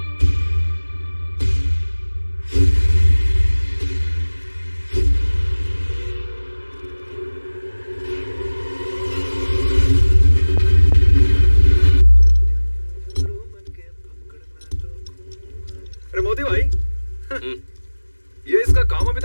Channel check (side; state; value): both; inverted; correlation -1.00